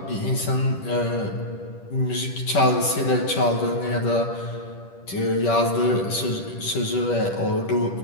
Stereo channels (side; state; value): right; late; 10 ms